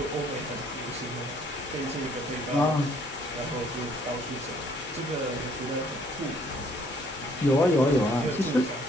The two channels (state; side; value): noise; left; hum, 25 dB below the sound